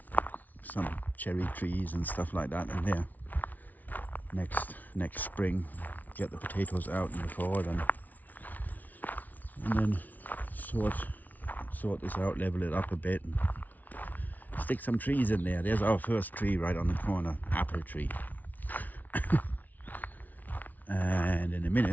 some cherry trees and stuff like that in there. Next spring, get the potatoes out in the fall, and then sort this out, level it up a bit, and stick some trees in there. There's our first tree right on the corner, apple tree. And in a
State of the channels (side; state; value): right; late; 0.078 ms